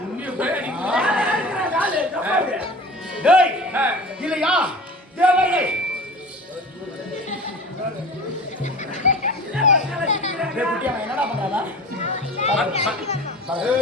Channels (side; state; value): both; normal; correlation 0.38